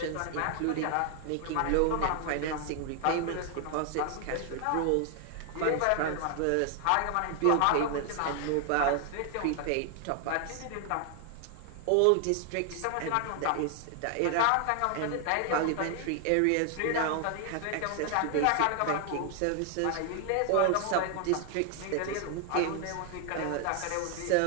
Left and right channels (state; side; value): different; both; correlation 0.00